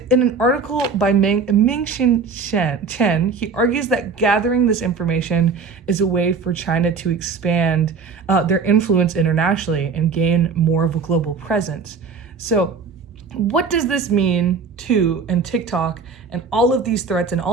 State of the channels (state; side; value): quieter; left; 5.1 dB